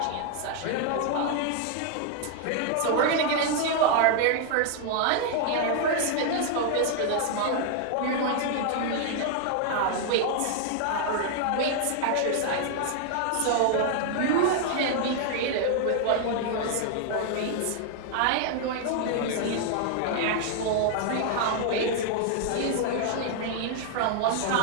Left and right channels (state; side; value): different; both; correlation 0.00